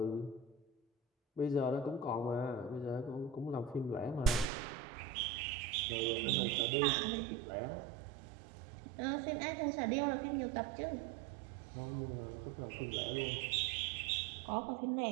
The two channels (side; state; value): left; drops out; at 4.5 s